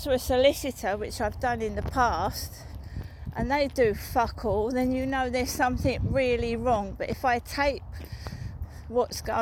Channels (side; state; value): both; identical; correlation 1.00